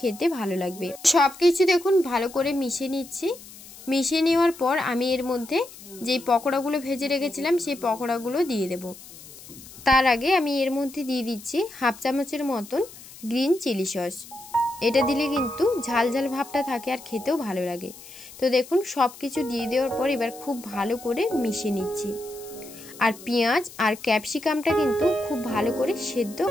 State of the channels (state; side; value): noise; left; hiss, 18 dB below the sound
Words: খেতে ভালো লাগবে। সবকিছু দেখুন ভালো করে মিশিয়ে নিচ্ছি। মিশিয়ে নেওয়ার পর আমি এর মধ্যে যেই পকোড়াগুলো ভেজে রেখেছিলাম সেই পকোড়াগুলো দিয়ে দেব। তার আগে আমি এর মধ্যে দিয়ে দিচ্ছি হাফ চামচের মতন গ্রিন চিলি সস। এটা দিলে কিন্তু ঝাল ভাবটা থাকে আর খেতেও ভালো লাগে। তো দেখুন সব কিছু দিয়ে দেওয়ার পর এবার খুব ভালো করে মিশিয়ে নিচ্ছি। আর পেঁয়াজ আর ক্যাপসিকামটা কিন্তু খুব ভালো করে সেদ্ধ